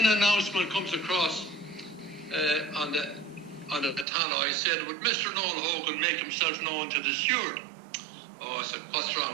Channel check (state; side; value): drops out; left; at 4.0 s